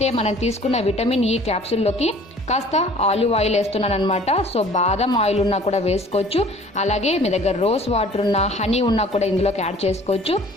మనం తీసుకున్న విటమిన్ ఈ క్యాప్సూల్లోకి కాస్త ఆలివ్ ఆయిల్ వేస్తున్నాను అనమాట. సో బాదం ఆయిల్ ఉన్నా కూడా వేసుకోవచ్చు. అలాగే మీ దగ్గర రోజ్ వాటర్ ఉన్నా, హనీ ఉన్నా కూడా ఇందులోకి యాడ్ చేసుకోవచ్చు.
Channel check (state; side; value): normal; both; correlation 0.51